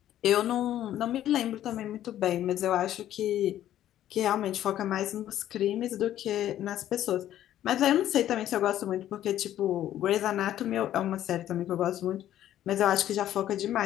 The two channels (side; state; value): right; quieter; 12.1 dB